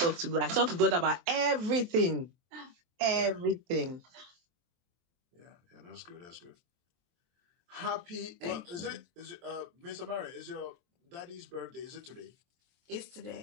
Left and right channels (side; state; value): left; late; 23 ms